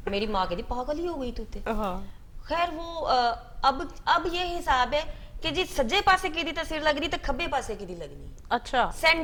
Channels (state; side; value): identical; both; correlation 1.00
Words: मेरी माँ कहती पागल ही हो गई तू ते। खैर वो अब ये हिसाब है कि जी सज्जे पासे की दी तस्वीर लगनी तो खब्बे पासे की दी लगनी। अच्छा।